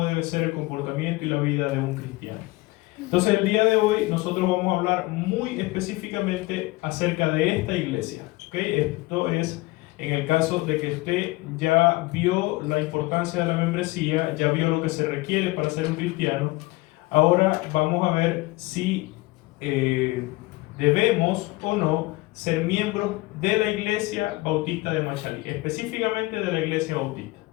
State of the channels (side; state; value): right; quieter; 21.3 dB